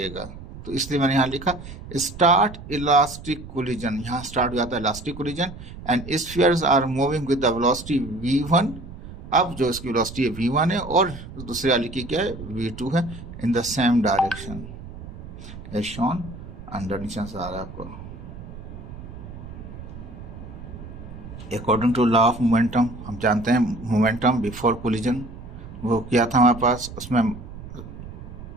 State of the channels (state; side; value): noise; right; rumble, 13 dB below the sound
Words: तो इसलिए मैंने यहाँ लिखा स्टार्ट इलास्टिक कोलिजन, यहाँ स्टार्ट हो जाता है elastic collision and spheres are moving with the velocity v1। अब जो इसकी वेलोसिटी है v1 है और दूसरे वाली की क्या है, v2 है, in the same direction as shown under. नीचे से आ रहा है आपको, according to law of momentum, हम जानते हैं मोमेंटम बिफोर कोलिजन वो क्या था हमारे पास, उसमें